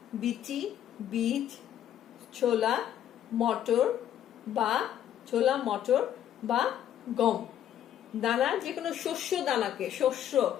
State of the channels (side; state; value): right; quieter; 10.7 dB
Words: বিচি, বীজ, ছোলা, মটর বা গম। দানা যে কোনো শস্য দানাকে, শস্য